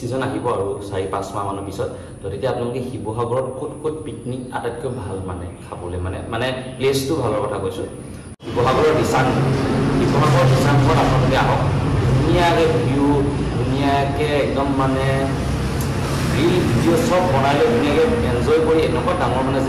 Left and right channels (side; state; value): both; identical; correlation 1.00